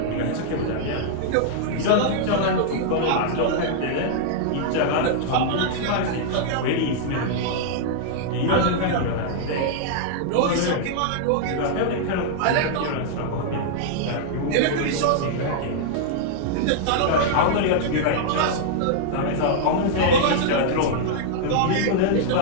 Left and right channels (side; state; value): both; different; correlation -0.01